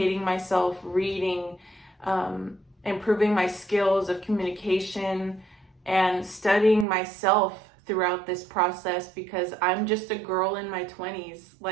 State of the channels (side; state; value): left; drops out; at 6.9 s